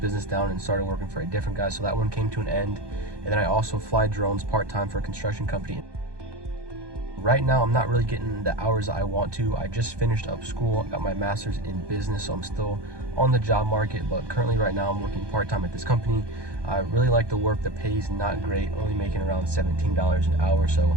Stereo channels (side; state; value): left; late; 1.2 ms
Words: down and started working for a different guy. So that one came to an end. And then I also fly drones part-time for a construction company. Right now, I'm not really getting the hours that I want to. I just finished up school, got my master's in business, so I'm still on the job market, but currently right now I'm working part-time at this company. I really like the work. The pay is not great, only making around $17 an hour, so